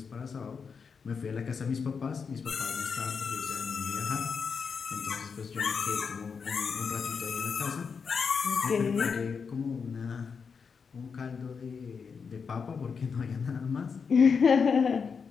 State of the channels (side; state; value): right; quieter; 5.8 dB